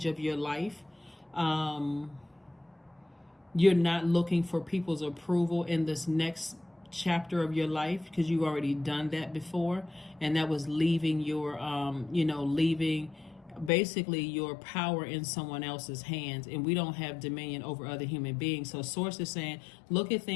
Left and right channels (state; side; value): drops out; right; at 13.7 s